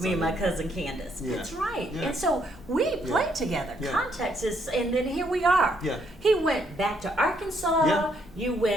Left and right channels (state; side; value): normal; both; correlation 0.72